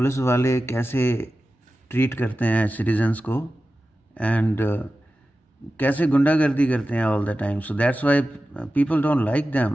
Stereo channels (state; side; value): normal; both; correlation 0.94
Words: वाले कैसे ट्रीट करते हैं सिटीजन्स को एंड कैसे गुंडागर्दी करते हैं all the time. So that's why people don't like them.